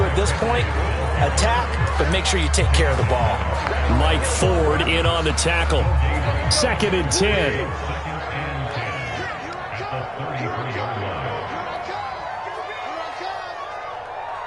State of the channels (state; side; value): identical; both; correlation 1.00